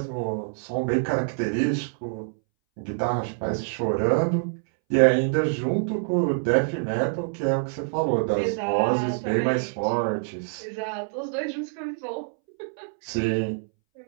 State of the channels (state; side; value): silent; left; 61 dB below the other